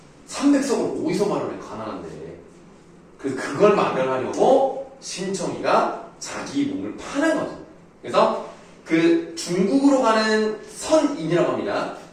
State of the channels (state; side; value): identical; both; correlation 1.00